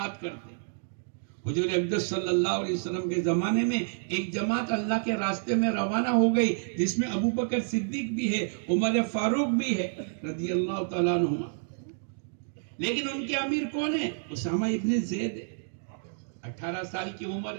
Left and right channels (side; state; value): left; silent; digital silence